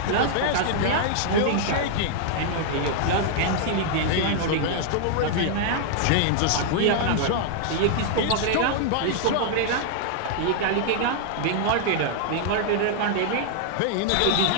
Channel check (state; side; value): different; both; correlation -0.01